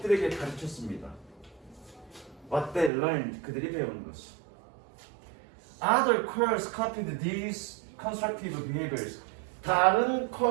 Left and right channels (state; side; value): drops out; left; at 2.9 s